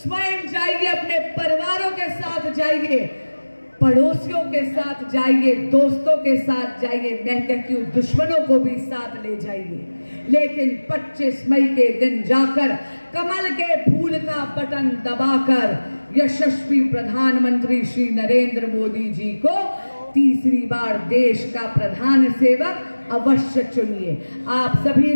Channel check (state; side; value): inverted; both; correlation -1.00